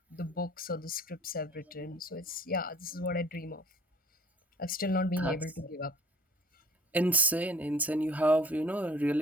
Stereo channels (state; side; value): normal; both; correlation 0.53